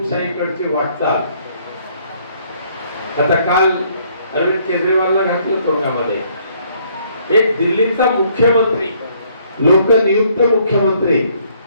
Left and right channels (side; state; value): both; inverted; correlation -0.65